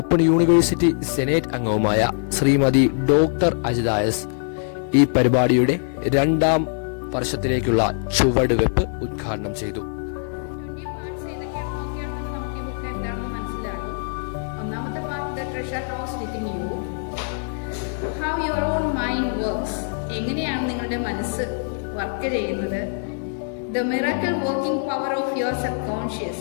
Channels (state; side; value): silent; right; digital silence